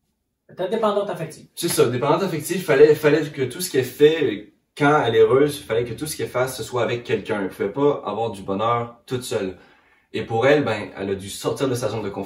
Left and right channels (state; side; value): identical; both; correlation 1.00